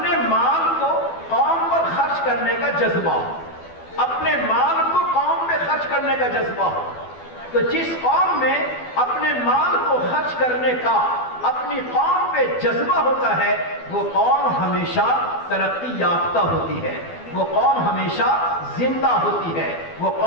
مال کو قوم پر خرچ کرنے کا جذبہ ہو، اپنے مال کو قوم پہ خرچ کرنے کا جذبہ ہو، تو جس قوم میں اپنے مال کو خرچ کرنے کا اپنی قوم پہ جذبہ ہوتا ہے وہ قوم ہمیشہ ترقی یافتہ ہوتی ہے، وہ قوم ہمیشہ زندہ ہوتی ہے، وہ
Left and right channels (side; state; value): right; late; 12 ms